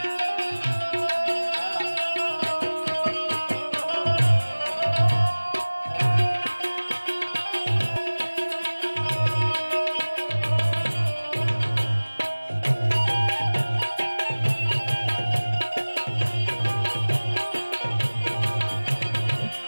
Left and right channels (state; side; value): inverted; both; correlation -1.00